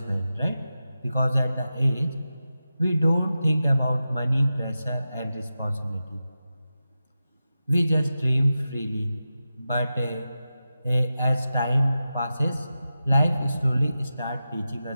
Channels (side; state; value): both; inverted; correlation -0.92